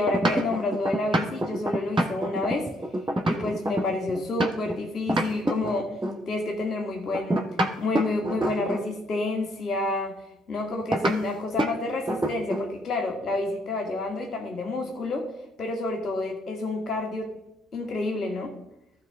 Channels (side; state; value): both; normal; correlation 0.71